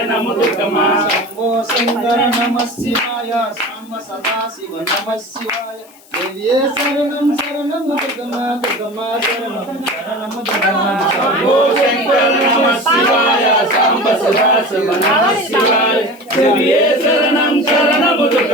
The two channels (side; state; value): left; noise; hiss, 26 dB below the sound